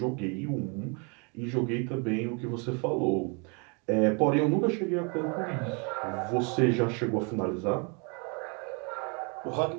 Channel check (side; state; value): left; quieter; 34.1 dB